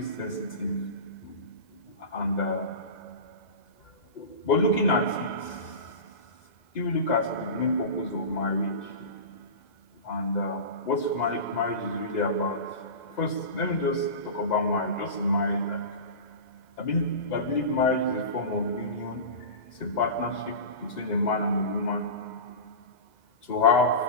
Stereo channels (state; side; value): late; right; 2.0 ms